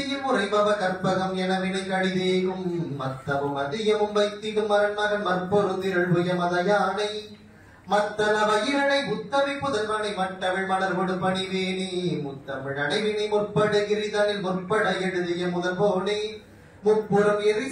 உரைபவ கற்பகம் என வினை கடிதேகும் மத்தமும் அதிகமும் வைத்திடும் மரண்மகன் மற்பொருந்திரள் புயமத யானை மத்தன வயிறனை புத்தவி புதல்வனை மட்டவிழ் மலர்கொடு பணிவேணி முத்தமிழ் அடைவினை முற்படுகிரிதனில் முற்பட எழுதிய முதல் போனே முப்புறம் எரி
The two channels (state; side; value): identical; both; correlation 1.00